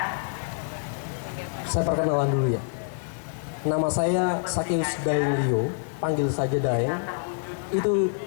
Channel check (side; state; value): right; silent; 61 dB below the other